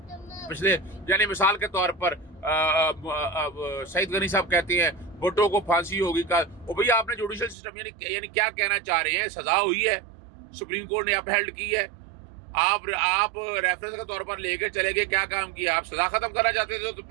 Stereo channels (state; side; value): drops out; left; at 7.6 s